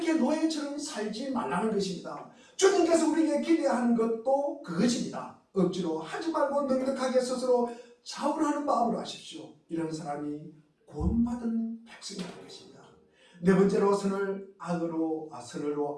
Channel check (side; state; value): both; identical; correlation 1.00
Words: 노예처럼 살지 말라는 것입니다. 주님께서 우리에게 기대하는 것도 그것입니다. 억지로 하지 말고 넉넉하게 스스로 자원하는 마음으로 하십시오. 이런 사람이 구원받은 백성이라는 것입니다. 네 번째로 선을 악으로